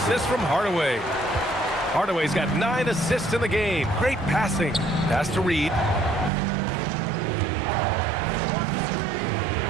from Hardaway. Hardaway's got 9 assists in the game. Great passing. Pass to Reid.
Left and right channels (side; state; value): left; drops out; at 6.3 s